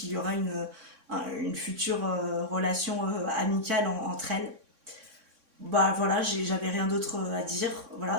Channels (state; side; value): late; left; 3.6 ms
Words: y aura une future relation amicale entre elles. Voilà, j'avais rien d'autre à dire.